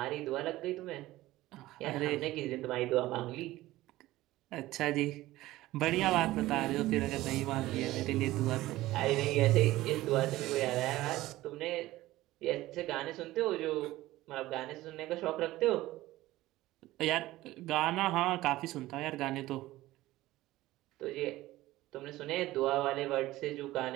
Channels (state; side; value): quieter; left; 16.9 dB